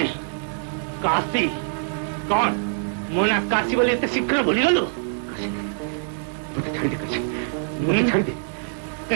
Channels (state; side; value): silent; left; 60 dB below the other